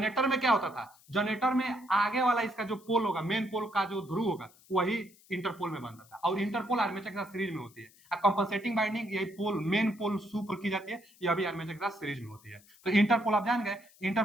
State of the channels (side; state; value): left; noise; hiss, 27 dB below the sound